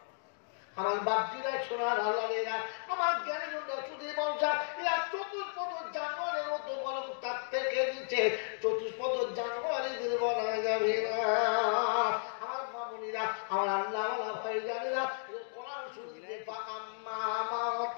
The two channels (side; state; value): right; silent; digital silence